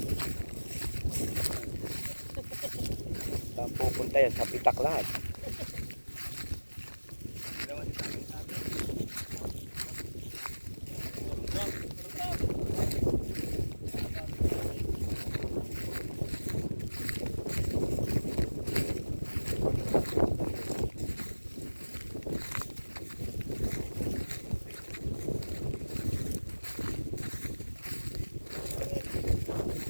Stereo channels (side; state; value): both; inverted; correlation -1.00